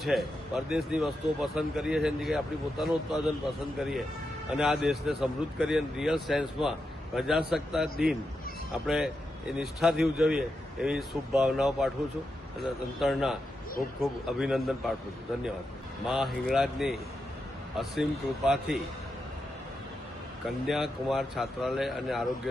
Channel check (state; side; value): normal; both; correlation 0.86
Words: છે, પરદેશની વસ્તુઓ પસંદ કરીએ છીએ એની જગ્યાએ આપણી પોતાનું ઉત્પાદન પસંદ કરીએ અને આ દેશને સમૃદ્ધ કરીએ. રિયલ સેન્સમાં પ્રજાસત્તાક દિન આપણે એ નિષ્ઠાથી ઉજવીએ એવી શુભ ભાવનાઓ પાઠવું છું અને તંત્રના ખૂબ ખૂબ અભિનંદન પાઠવું છું. ધન્યવાદ. મા હિંગળાજની અસીમ કૃપાથી કન્યાકુમાર છાત્રાલય અને